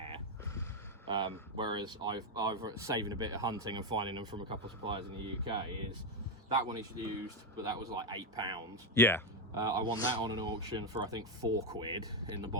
Whereas I've saving a bit of hunting and finding them from a couple of suppliers in the UK is that one is used, but that was like £8. Yeah. I won that on an auction for I think 4 quid in the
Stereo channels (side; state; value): both; normal; correlation 0.06